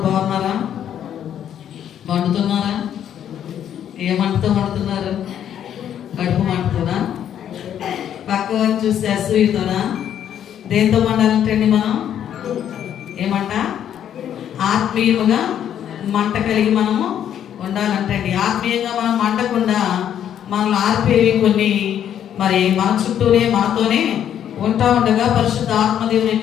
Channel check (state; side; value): quieter; right; 9.8 dB